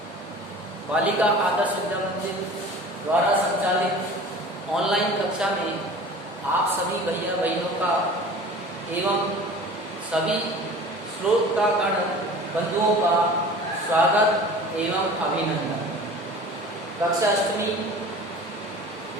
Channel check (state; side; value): normal; both; correlation 0.41